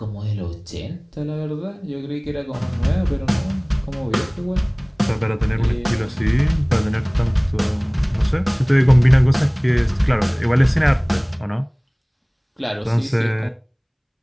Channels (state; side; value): identical; both; correlation 1.00